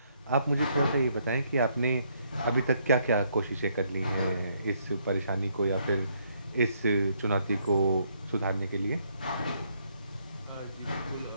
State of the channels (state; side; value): inverted; both; correlation -0.71